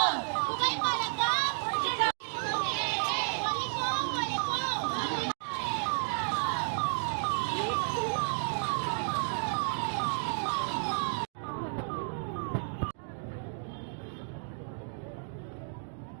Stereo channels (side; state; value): left; silent; digital silence